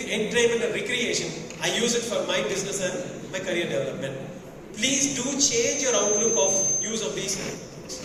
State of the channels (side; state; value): both; identical; correlation 1.00